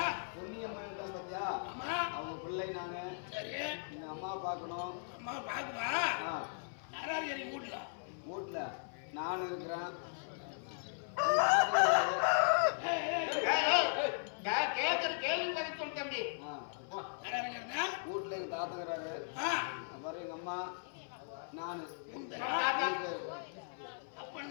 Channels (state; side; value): silent; right; 53 dB below the other